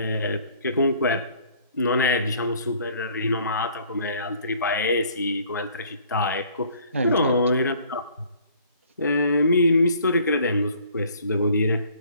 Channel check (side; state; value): both; inverted; correlation -0.57